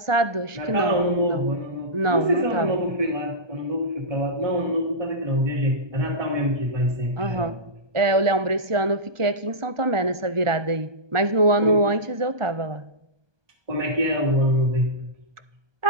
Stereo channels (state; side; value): late; left; 1.2 ms